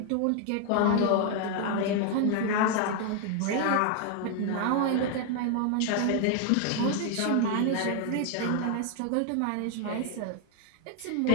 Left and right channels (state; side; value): different; both; correlation 0.00